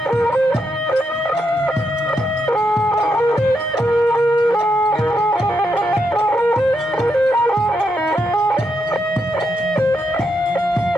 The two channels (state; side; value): normal; both; correlation 0.81